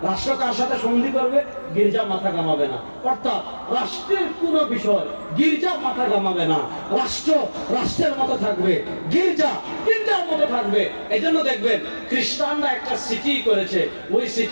রাষ্ট্র কার সাথে সন্ধি করবে? গির্জা মাথা কামাবে না। অর্থাৎ রাষ্ট্রের কোন বিষয় গির্জা মাথা কামাবে না। রাষ্ট্র রাষ্ট্রের মতো থাকবে, গির্জা গির্জার মতো থাকবে। এই জন্য দেখবেন খ্রিস্টানরা একটা সিটি করেছে, ওই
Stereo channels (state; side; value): inverted; both; correlation -1.00